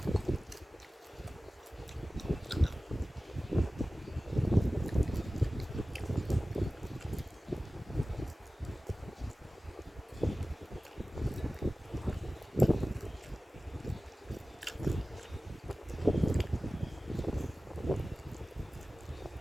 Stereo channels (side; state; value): both; normal; correlation 0.96